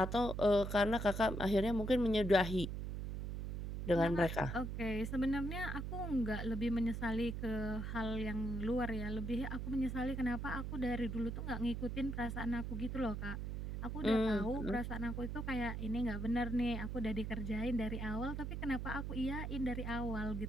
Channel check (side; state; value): right; noise; hum, 4 dB below the sound